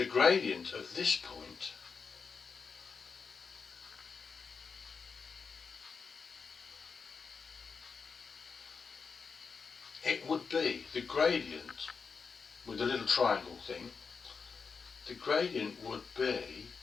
gradient of this point, it would be the gradient with the little triangle thing. The gradient would be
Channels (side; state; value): right; quieter; 5.3 dB